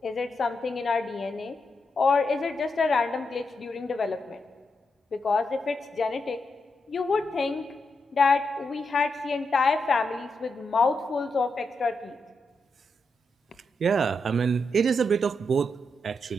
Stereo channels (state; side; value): normal; both; correlation 0.84